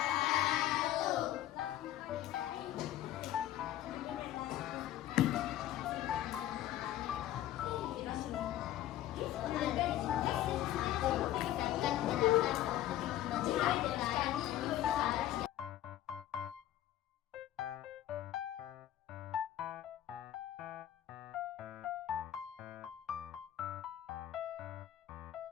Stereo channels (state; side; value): quieter; right; 13.1 dB